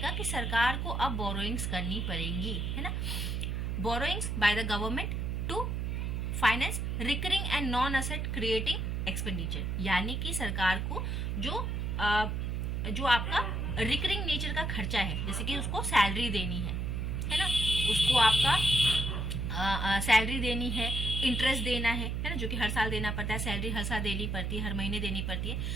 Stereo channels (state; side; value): noise; right; hum, 1 dB below the sound